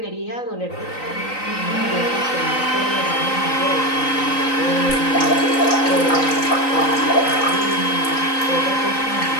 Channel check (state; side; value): late; right; 3.9 ms